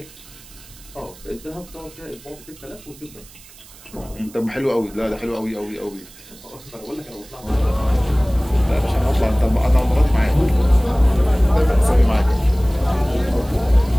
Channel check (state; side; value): noise; right; hiss, 22 dB below the sound